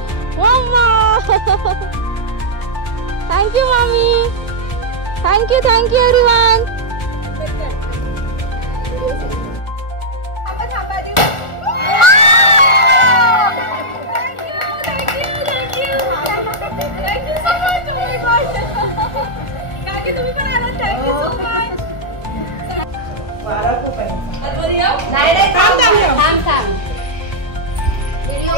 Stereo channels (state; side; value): late; right; 1.4 ms